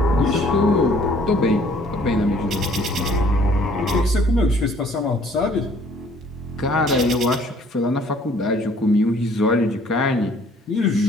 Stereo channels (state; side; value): normal; both; correlation 0.58